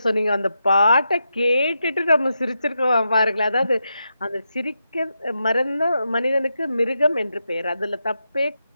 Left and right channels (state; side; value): inverted; both; correlation -0.86